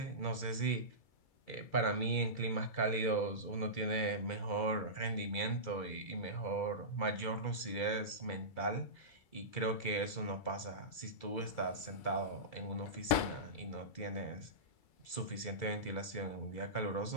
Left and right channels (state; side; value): late; right; 2.3 ms